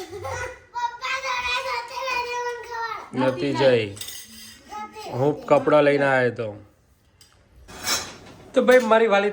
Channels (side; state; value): both; identical; correlation 1.00